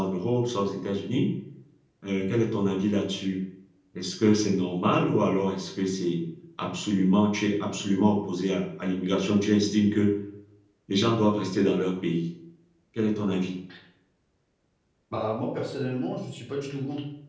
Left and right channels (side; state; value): both; identical; correlation 1.00